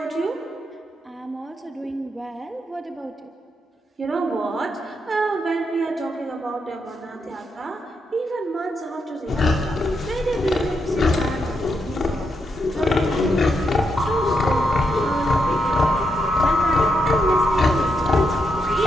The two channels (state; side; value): normal; both; correlation 0.81